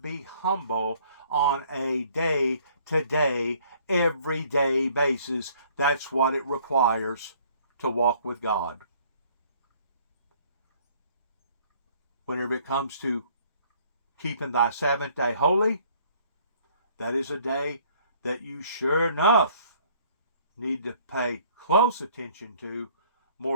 humble on a day-to-day, everyday basis. That's what it requires to walk with God. Whenever it comes to keeping thy Sabbath day holy, that is a day that you sure enough need to pay close attention to,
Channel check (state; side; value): inverted; both; correlation -0.59